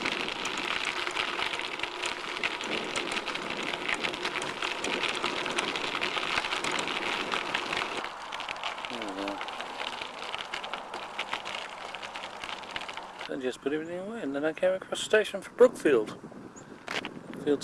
I just put everything away, and then I came across the station for Brookfield. Brookfield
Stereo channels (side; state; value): both; identical; correlation 1.00